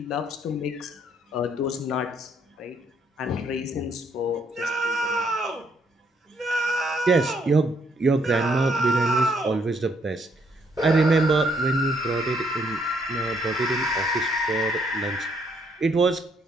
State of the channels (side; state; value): both; normal; correlation 0.70